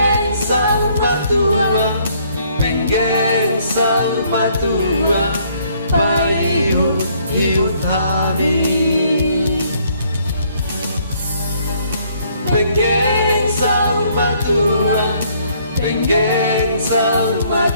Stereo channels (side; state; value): both; inverted; correlation -0.65